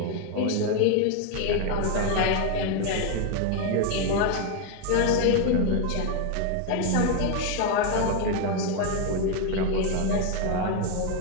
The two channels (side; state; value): both; different; correlation 0.01